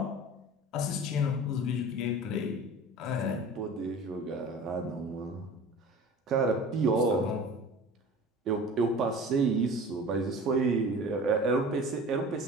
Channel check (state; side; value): normal; both; correlation 0.40